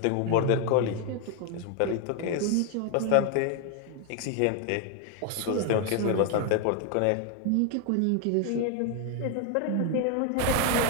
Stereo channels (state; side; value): different; both; correlation 0.00